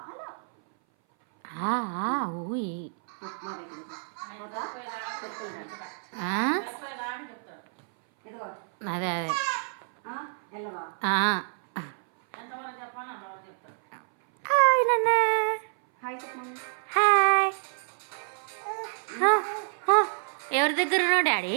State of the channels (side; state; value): left; silent; 58 dB below the other